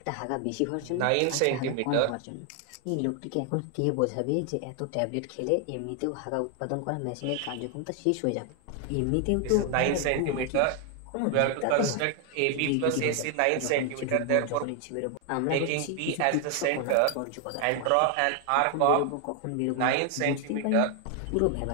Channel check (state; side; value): different; both; correlation 0.00